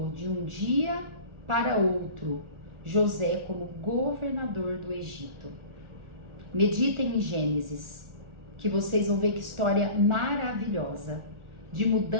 de um dia para outro José como governador do Egito. Meditem em Gênesis, que vocês vão ver que história maravilhosa, de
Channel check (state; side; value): late; left; 1.4 ms